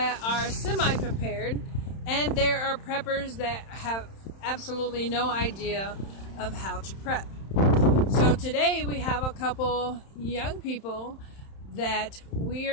are semi-prepared, and there are preppers that have absolutely no idea of how to prep. So today we have a couple young people that we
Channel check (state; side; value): late; right; 31 ms